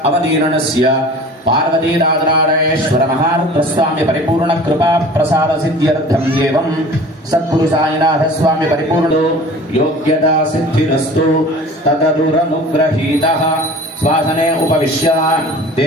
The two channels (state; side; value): normal; both; correlation 0.43